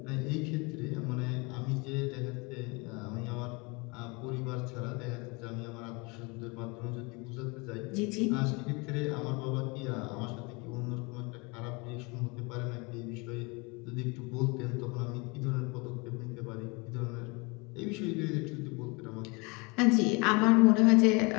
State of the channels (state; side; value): quieter; right; 28.4 dB